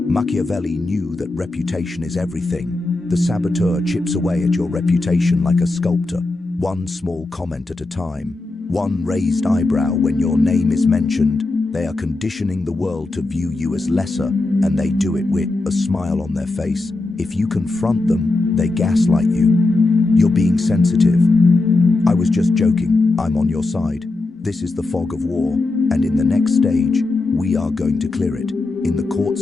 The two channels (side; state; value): right; quieter; 3.1 dB